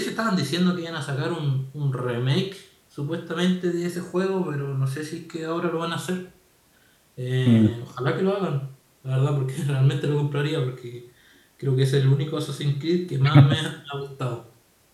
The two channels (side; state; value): both; identical; correlation 1.00